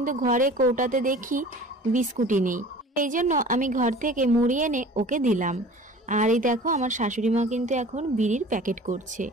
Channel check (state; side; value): normal; both; correlation 0.43